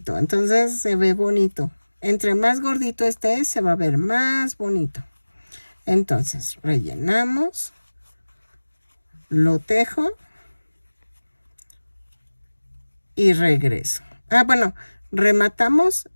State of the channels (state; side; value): inverted; both; correlation -1.00